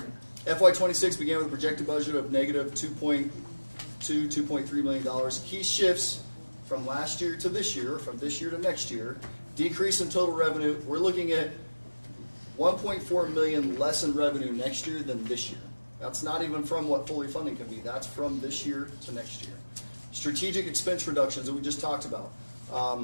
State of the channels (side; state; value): both; inverted; correlation -1.00